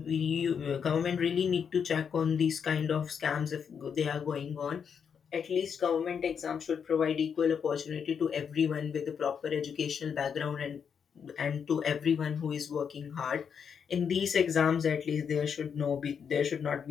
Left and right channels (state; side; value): quieter; right; 7.0 dB